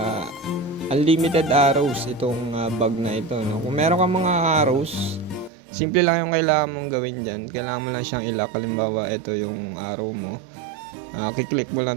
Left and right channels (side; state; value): left; drops out; at 5.5 s